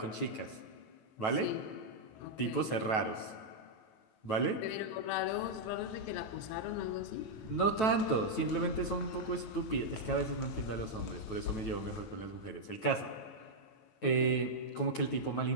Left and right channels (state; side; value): late; right; 9.2 ms